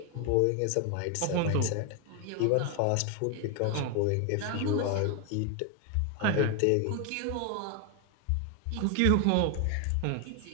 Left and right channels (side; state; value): both; different; correlation 0.01